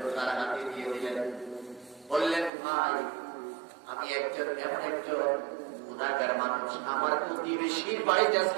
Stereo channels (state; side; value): drops out; left; at 2.5 s